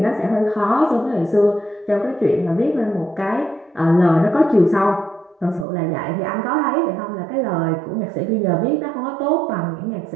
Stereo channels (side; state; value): left; drops out; at 5.7 s